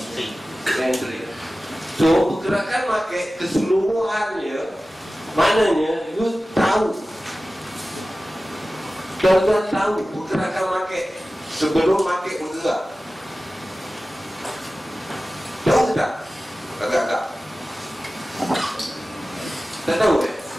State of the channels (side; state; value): both; normal; correlation 0.96